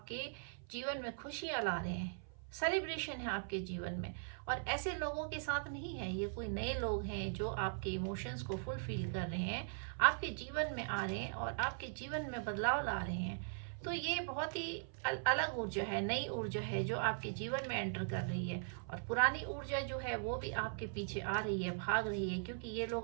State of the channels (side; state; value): left; silent; 51 dB below the other